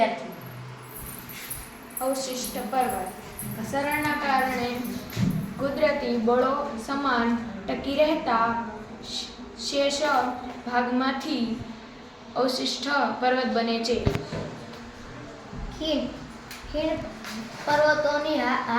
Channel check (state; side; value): identical; both; correlation 1.00